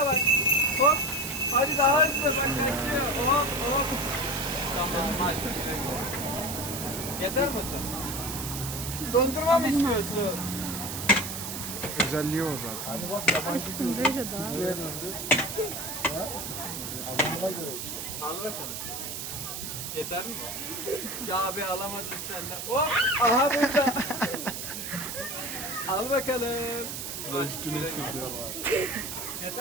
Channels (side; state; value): right; noise; hiss, 6 dB below the sound